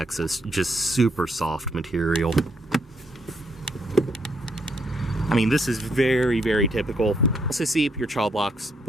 just super soft material. I mean, this is very, very typical. Also see your child locks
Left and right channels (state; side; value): normal; both; correlation 0.74